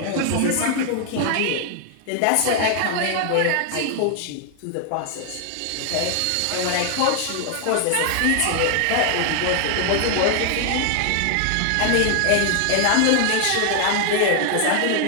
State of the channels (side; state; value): both; different; correlation 0.00